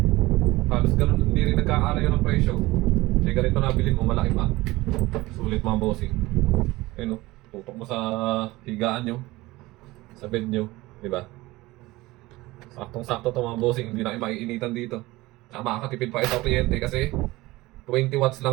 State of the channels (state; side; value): quieter; left; 19.7 dB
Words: Halos ganun, hindi rin nagkakaalayo ng presyo. Kaya ganito nabili mo, malaki pa. Sulit mga bossing. Ayun oh, tutok mo sa higaan nyo. Sa bed nyo, diba? Saktong-sakto to mga bossing, hindi na kayo maiinitan dito. Tsaka makakatipid pa ito kliyente kasi 20 watts